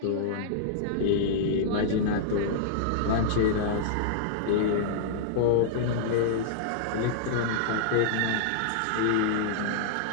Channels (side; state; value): both; different; correlation -0.02